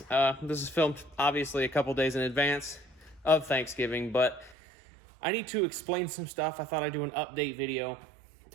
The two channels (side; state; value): left; drops out; at 4.5 s